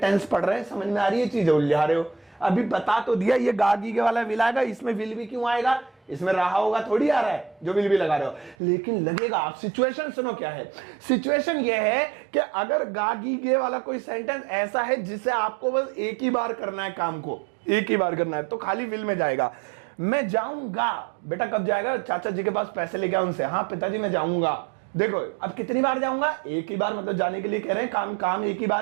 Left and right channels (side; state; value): left; drops out; at 8.6 s